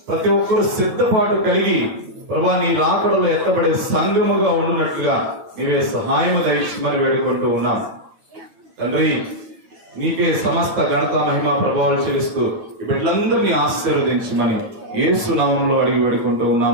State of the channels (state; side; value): late; left; 9.0 ms